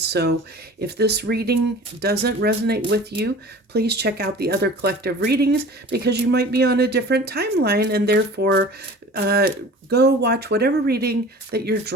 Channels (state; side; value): normal; both; correlation 0.41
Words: so if this reading doesn't resonate with you, please check out the other collective readings because you might be on a different timeline, and therefore go watch whatever reading that you're